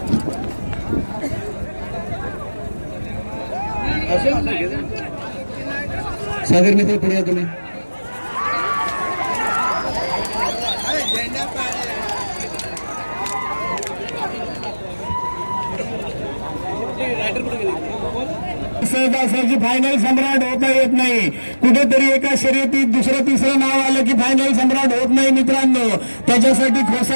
सागर मित्र पुढे या तुम्ही. सहजासहजी फायनल सम्राट होता येत नाही. कुठेतरी एका शर्यतीत दुसरं तिसरं नाव आलं की फायनल सम्राट होत नाही मित्रांनो. त्याच्यासाठी खोसा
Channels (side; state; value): both; inverted; correlation -1.00